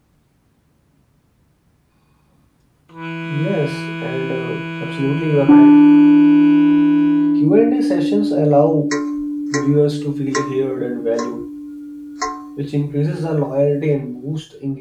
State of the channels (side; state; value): both; identical; correlation 1.00